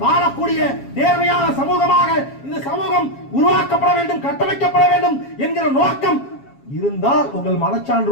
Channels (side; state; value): right; late; 7.3 ms